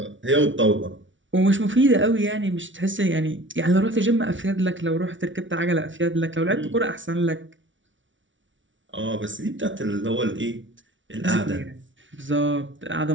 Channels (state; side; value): late; left; 0.56 ms